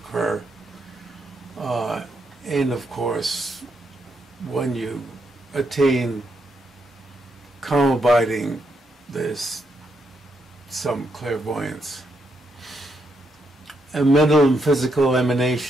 and of course when you attain calm abiding, there's some clairvoyance. A mental and physical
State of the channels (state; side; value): normal; both; correlation 0.79